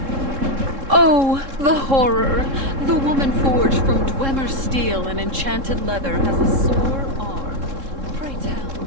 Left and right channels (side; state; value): left; late; 3.7 ms